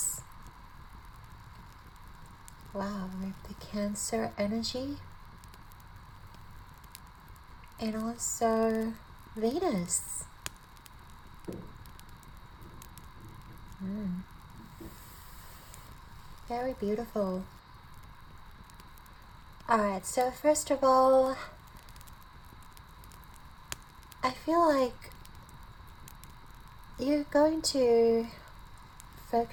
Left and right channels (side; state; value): both; identical; correlation 1.00